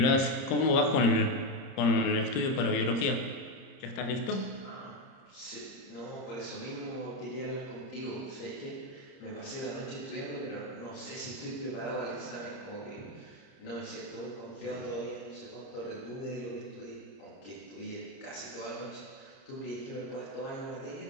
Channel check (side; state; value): right; late; 30 ms